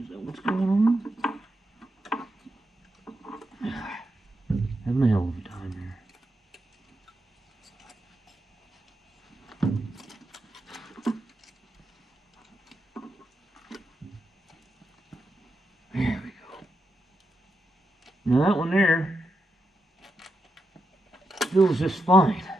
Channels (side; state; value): both; normal; correlation 0.85